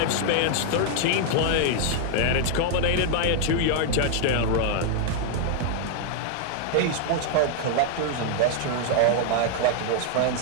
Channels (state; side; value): different; both; correlation 0.00